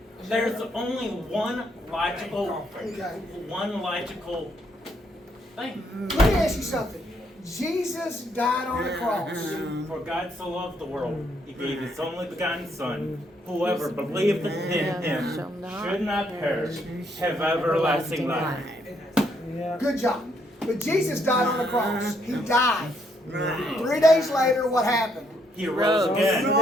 there's only one logical Okay. thing. Let me ask you something. Jesus died on the cross. For God so loved the world, He gave His only begotten Son. Whoever believed in Him should not perish, have everlasting life. Good job. But Jesus died on the cross. He died. Right. 3 days later, what happened? He rose again.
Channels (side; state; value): both; normal; correlation 0.72